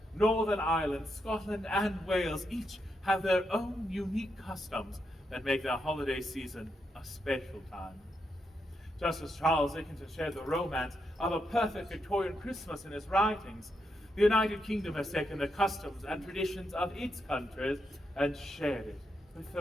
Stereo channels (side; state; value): both; normal; correlation 0.82